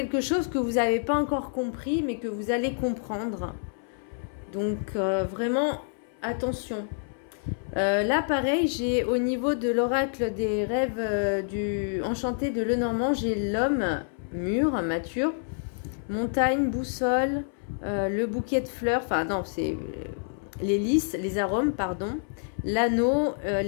chose que vous n'avez pas encore compris, mais que vous allez comprendre. Donc vraiment, attention. Là, pareil, j'ai au niveau de l'oracle des rêves du enchanté de Lenormand, j'ai l'homme mûr, mature, montagne, boussole, le bouquet de fleurs, enfin non, c'est les lys, les arômes, pardon, l'anneau,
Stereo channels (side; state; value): right; silent; 58 dB below the other